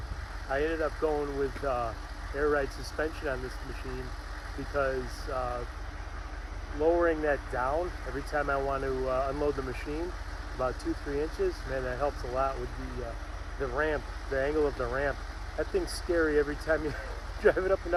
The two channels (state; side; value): identical; both; correlation 1.00